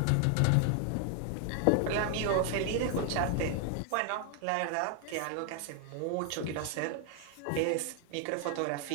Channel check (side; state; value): both; different; correlation 0.00